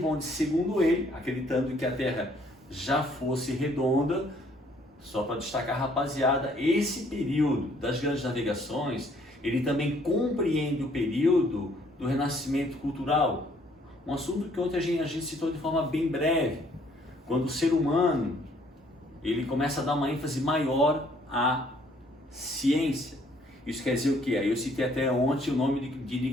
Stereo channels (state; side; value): normal; both; correlation 0.63